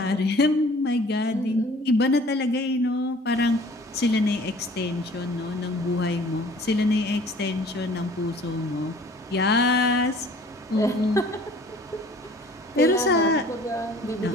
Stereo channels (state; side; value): normal; both; correlation 0.51